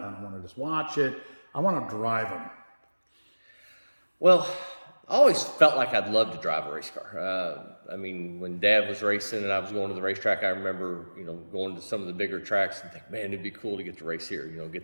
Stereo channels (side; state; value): both; inverted; correlation -1.00